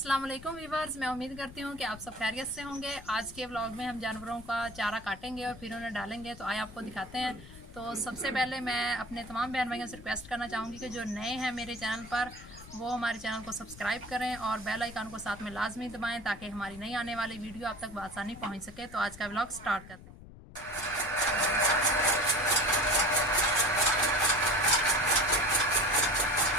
वालेकुम व्यूवर्स, मैं उम्मीद करती हूँ कि आप सब खैरियत से होंगे। आज के व्लॉग में हम जानवरों का चारा काटेंगे और फिर उन्हें डालेंगे, तो आए आपको दिखाते हैं। तो सबसे पहले मैं अपने तमाम बहन भाइयों से रिक्वेस्ट करना चाहूँगी कि जो नए हैं मेरे चैनल पर, वो हमारे चैनल को सब्सक्राइब करें और बेल आइकन को साथ में लाजमी दबाएँ ताकि हमारी नई आने वाली वीडियो आप तक बआसानी पहुँच सके। तो आज का व्लॉग स्टार्ट करते हैं।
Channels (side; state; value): left; noise; rumble, 17 dB below the sound